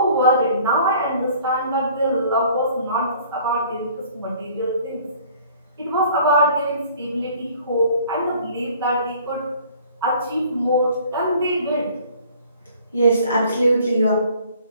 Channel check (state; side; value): inverted; both; correlation -0.53